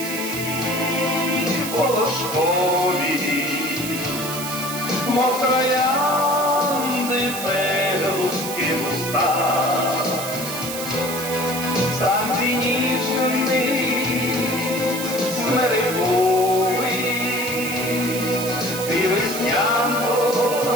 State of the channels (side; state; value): right; noise; hiss, 7 dB below the sound